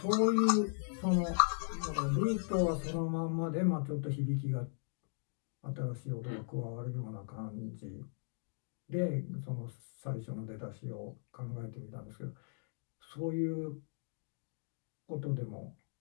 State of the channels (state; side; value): silent; right; digital silence